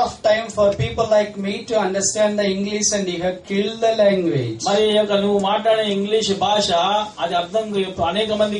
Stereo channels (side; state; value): both; identical; correlation 1.00